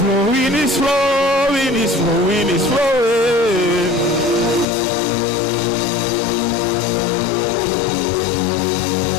it's flowing, it's flowing, it's flowing.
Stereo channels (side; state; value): right; drops out; at 4.7 s